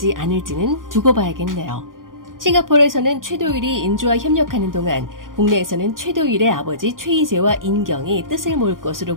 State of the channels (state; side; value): late; left; 0.90 ms